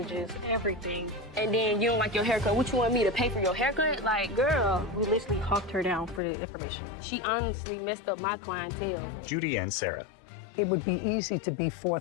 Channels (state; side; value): drops out; right; at 6.2 s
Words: everything. And then you don't like your haircut. What you want me to pay for your haircut? Like, girl. We literally hawked her down for the information. She honestly messed up my clientele. Judy and Sarah. It would be easy to be